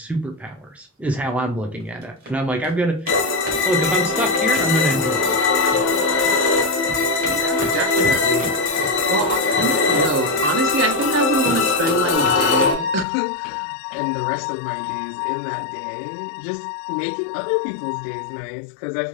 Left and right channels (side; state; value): right; drops out; at 13.1 s